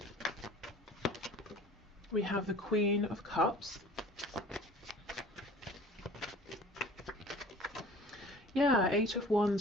We have the Queen of Cups. Yeah, Eight of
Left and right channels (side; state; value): both; normal; correlation 0.46